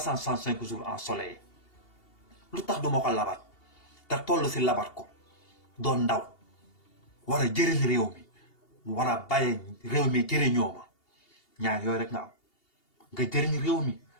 jours ensoleillé lu tax duma ko labat te toll ci labat ko doon ndaw war a jëriñ réew mi war a bàyyi réew mi jëriñoo ma ñaar yooyu rek nga am nga jëriñ réew mi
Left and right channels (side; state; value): right; late; 2.8 ms